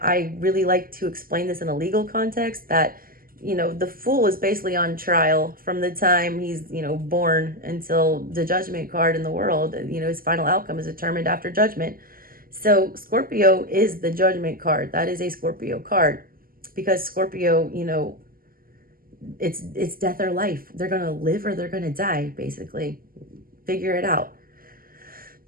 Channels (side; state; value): left; late; 0.42 ms